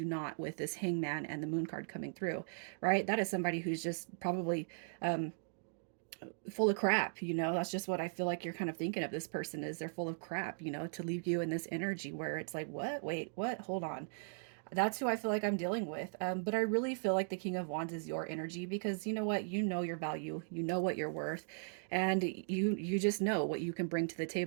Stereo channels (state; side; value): silent; left; digital silence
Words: not with this hangman and the moon card coming through, right? That is somebody who's just probably um, full of crap, you know. That's just what I feel like you're kind of thinking of this person, is they're full of crap, you know, to leave you in this energy where it's like, what? Wait, what? Hold on. That's who I feel like I'm dealing with. But I really feel like the King of Wands is your energy, because you know what? You know your value, you know what you're worth, and you just know what you can bring to the